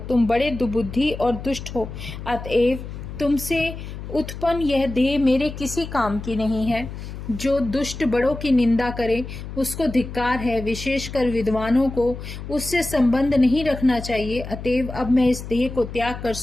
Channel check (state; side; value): noise; left; hum, 10 dB below the sound